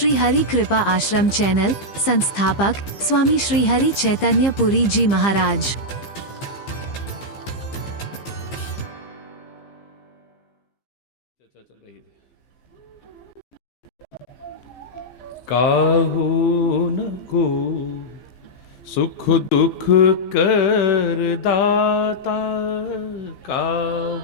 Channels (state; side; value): late; right; 15 ms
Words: हरि कृपा आश्रम चैनल। संस्थापक स्वामी श्री हरि चैतन्य पुरी जी महाराज। चल रही थी। काहू न को सुख दुख कर दाता,